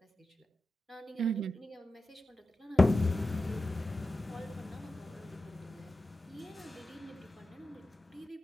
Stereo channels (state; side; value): normal; both; correlation 0.92